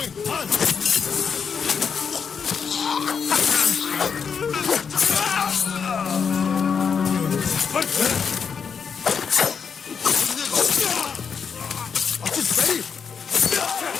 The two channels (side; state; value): right; quieter; 6.4 dB